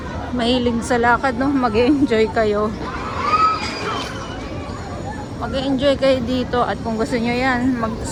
mahilig sa lakad, no, mag-enjoy kayo. Mag-enjoy kayo dito at kung gusto nyo yan,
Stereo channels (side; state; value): both; identical; correlation 1.00